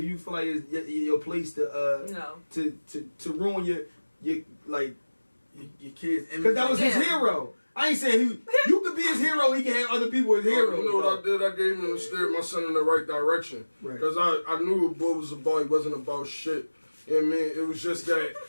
you feel like it's your place to No. to ruin your like Your kids. because that was his Yeah. hero. I ain't saying you could be his hero. He can have other people as heroes. You know what I did? I gave him and steered my son in the right direction. Right. Because I knew what boy was about. He wasn't about shit. You know what I mean? It was just that.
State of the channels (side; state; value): both; inverted; correlation -1.00